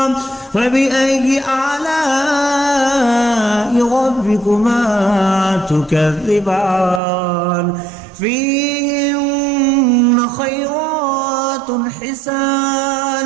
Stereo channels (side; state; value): left; drops out; at 7.0 s